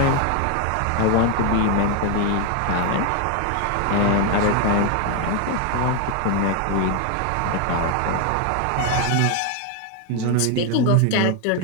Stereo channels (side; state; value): both; different; correlation 0.01